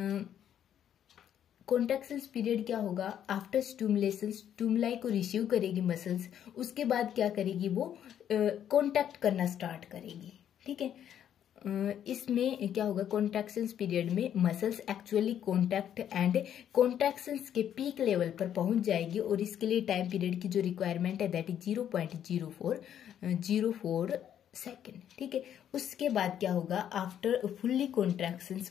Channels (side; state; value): right; quieter; 9.9 dB